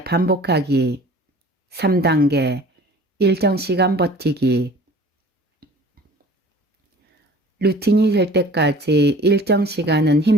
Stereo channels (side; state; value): both; normal; correlation 0.46